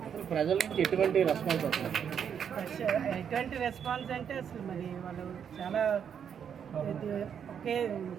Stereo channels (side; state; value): left; quieter; 7.9 dB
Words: ప్రజల నుంచి ఎటువంటి రెస్పాన్స్ వస్తుంది? ఎటువంటి రెస్పాన్స్ అంటే అసలు మరి వాళ్ళు చాలా